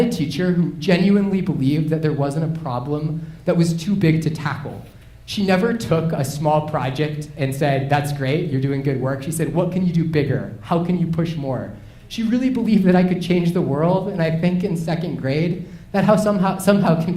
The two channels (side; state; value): both; identical; correlation 1.00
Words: a teacher who genuinely believed that there wasn't a problem that was too big to tackle. She never took a small project and said, that's great, you're doing good work. She said, what can you do bigger? How can you push more? She really believed that I could change the world, and I think in 2nd grade, that somehow